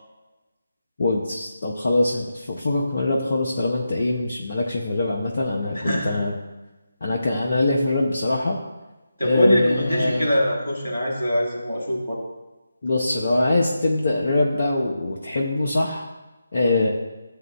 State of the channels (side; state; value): both; inverted; correlation -0.88